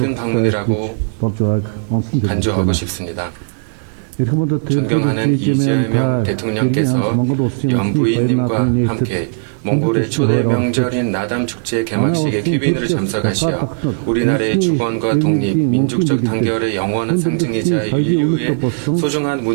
방문이라고 간주하고 싶습니다. 존경하는 이재명 대통령께서 연부인님과 함께 몽골의 초대 명절인 나담 축제 개막식에 귀빈으로 참석하시어 우리나라의 주권과 독립, 민족적 단결의 영원한 상징이자 인류의 소중한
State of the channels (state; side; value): silent; left; digital silence